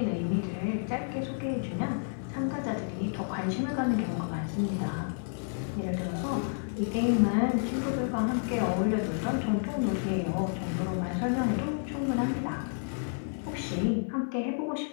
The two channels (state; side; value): silent; right; digital silence